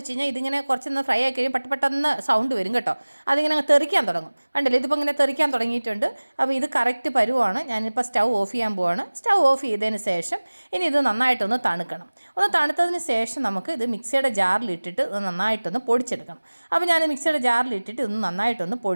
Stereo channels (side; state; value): both; inverted; correlation -1.00